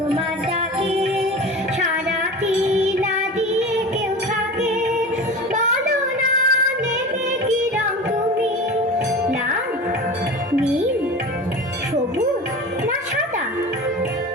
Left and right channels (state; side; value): normal; both; correlation 0.32